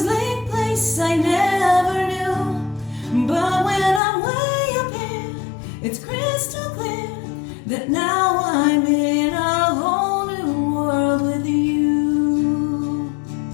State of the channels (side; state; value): right; drops out; at 4.0 s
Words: place I never knew. But when I'm way up here, it's crystal clear that now I'm in a whole new world with you.